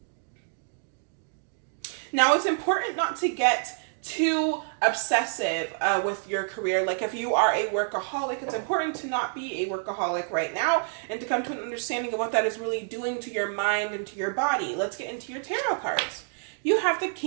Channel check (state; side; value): silent; left; digital silence